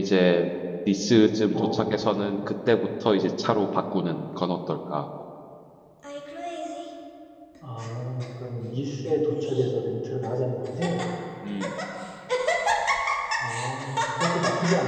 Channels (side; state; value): both; identical; correlation 1.00